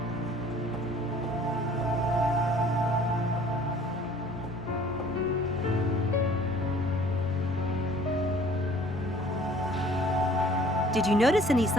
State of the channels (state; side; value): normal; both; correlation 0.53